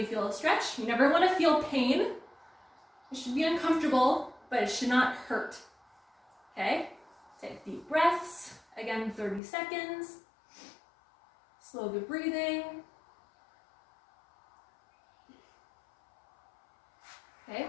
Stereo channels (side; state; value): right; drops out; at 9.4 s